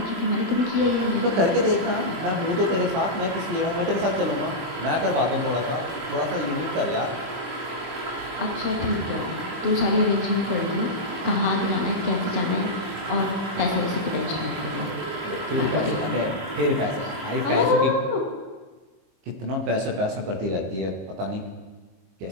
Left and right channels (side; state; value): left; late; 22 ms